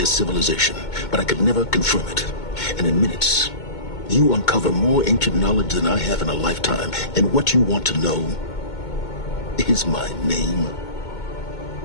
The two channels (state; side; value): late; right; 2.2 ms